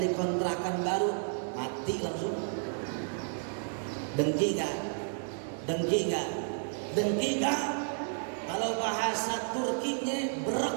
kontrakan baru, mati langsung. Dengki gak? Kalau bahasa Turkinya berek.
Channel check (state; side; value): silent; left; digital silence